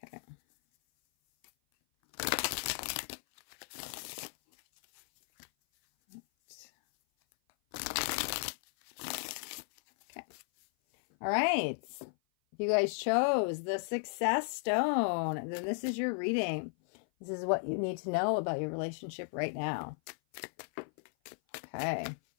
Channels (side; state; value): right; silent; 55 dB below the other